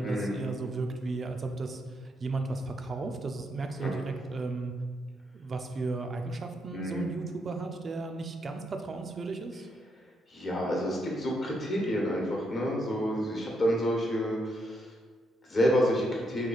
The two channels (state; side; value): normal; both; correlation 0.78